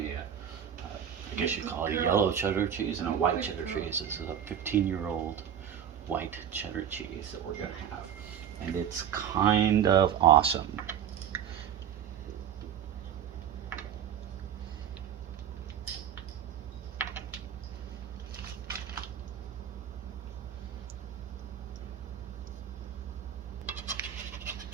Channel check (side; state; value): left; quieter; 9.1 dB